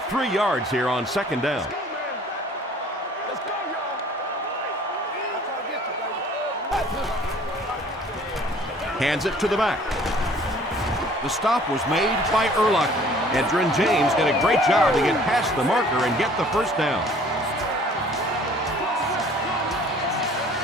3 yards here on 2nd down. Hands it to the back. The stop was made by Urlacher. Edgerrin James did a great job to get past the marker and get the 1st down.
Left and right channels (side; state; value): both; normal; correlation 0.53